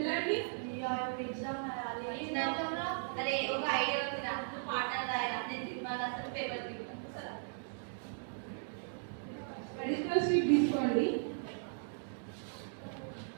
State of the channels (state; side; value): silent; left; digital silence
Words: ఎగ్జామ్ అరే ఒక ఐడియా ఉంది నాకు, పాటలు రాయాలి, నేను సినిమాలు అసలు పేపర్ తీసుకుంటాను. అడిషనల్ షీట్ తీసుకోండి.